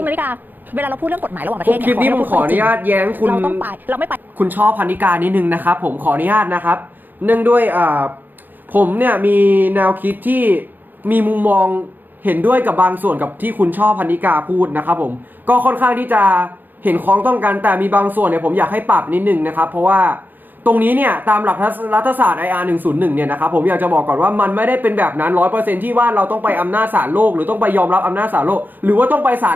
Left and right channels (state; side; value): late; left; 0.089 ms